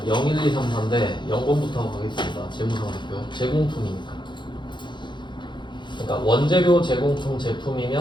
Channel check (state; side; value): late; right; 0.23 ms